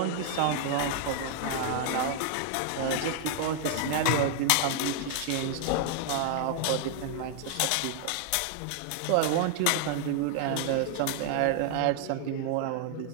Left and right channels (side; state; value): both; different; correlation 0.00